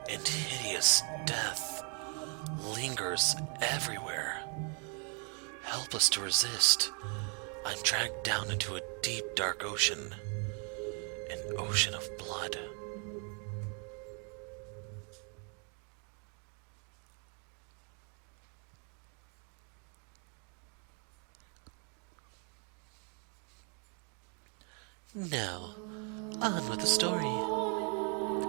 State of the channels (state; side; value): quieter; left; 38.9 dB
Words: and hideous death lingers everywhere. Helpless to resist, I'm dragged down into a deep, dark ocean, an ocean of blood. Now, on with the story.